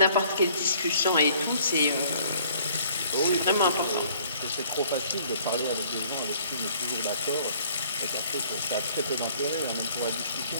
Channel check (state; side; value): inverted; both; correlation -0.58